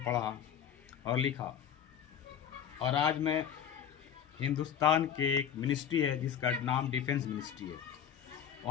पढ़ा और लिखा, और आज मैं हिंदुस्तान के एक मिनिस्ट्री है जिसका नाम डिफेंस मिनिस्ट्री है,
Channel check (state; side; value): quieter; right; 8.8 dB